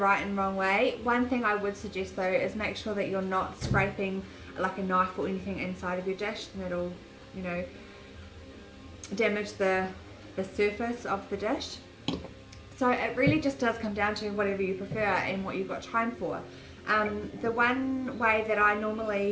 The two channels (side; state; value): both; identical; correlation 1.00